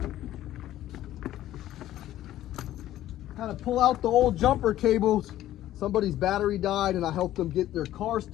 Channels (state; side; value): quieter; right; 13.5 dB